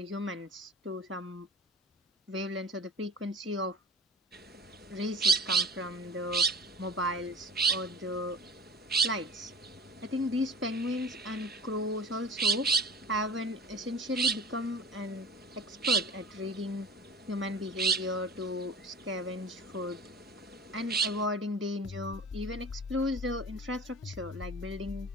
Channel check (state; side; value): normal; both; correlation 0.41